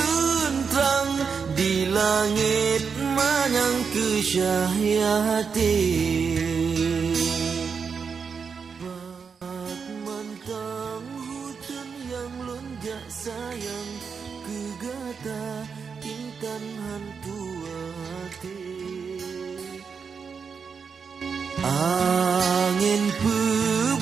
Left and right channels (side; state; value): left; quieter; 5.9 dB